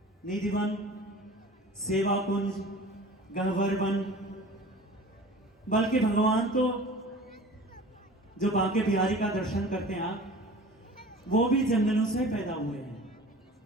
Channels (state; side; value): normal; both; correlation 0.41